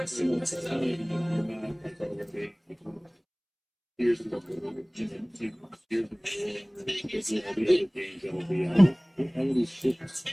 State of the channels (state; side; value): identical; both; correlation 1.00